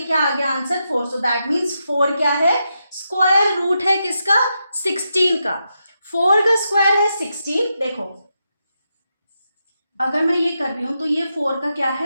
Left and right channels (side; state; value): both; inverted; correlation -0.85